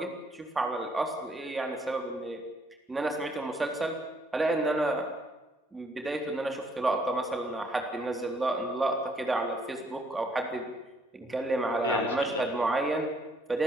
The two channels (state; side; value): normal; both; correlation 0.67